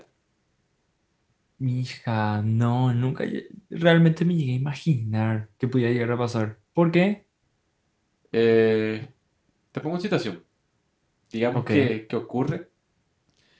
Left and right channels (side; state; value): both; identical; correlation 1.00